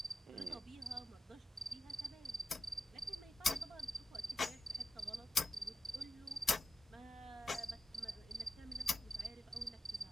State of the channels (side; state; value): both; normal; correlation 0.89